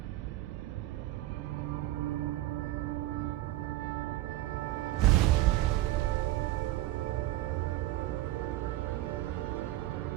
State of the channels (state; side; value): quieter; left; 16.0 dB